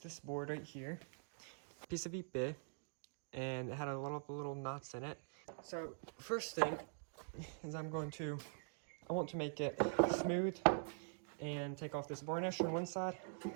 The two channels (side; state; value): left; silent; digital silence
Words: board right here, piece of épée, and it had a lot of little knots in it. So first thing is I want to make it smooth and take off this varnish on one side.